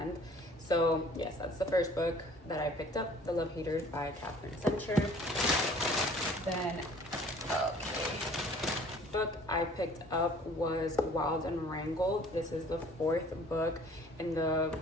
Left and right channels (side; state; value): both; normal; correlation 0.53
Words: So yes, that's the first book that I picked up, The Love Haters by Catherine Center. Then book I picked up was Wild and Wrangled. This is the 4th book in the